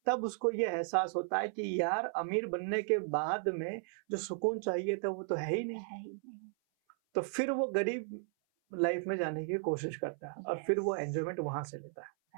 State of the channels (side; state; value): left; silent; 54 dB below the other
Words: तब उसको ये एहसास होता है कि यार अमीर बनने के बाद में जो सुकून चाहिए था वो तो है ही नहीं, है ही नहीं। तो फिर वो गरीब लाइफ में जाने की कोशिश करता है और फिर वो एंजॉयमेंट वहां से लेता है।